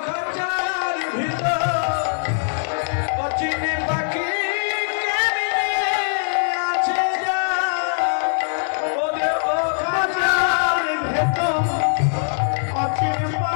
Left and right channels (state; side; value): silent; right; digital silence